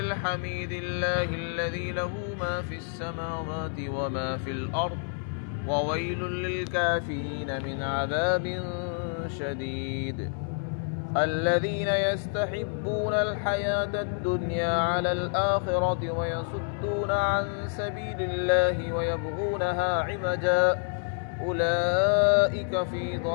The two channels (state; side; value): silent; right; 59 dB below the other